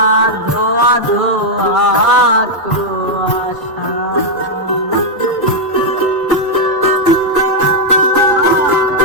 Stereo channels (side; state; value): both; normal; correlation -0.02